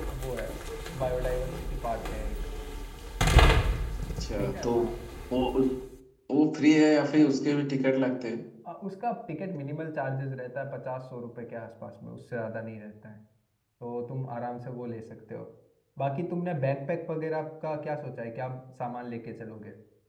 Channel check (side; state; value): both; identical; correlation 1.00